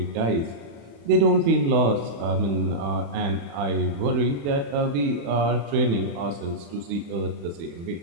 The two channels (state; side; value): late; left; 35 ms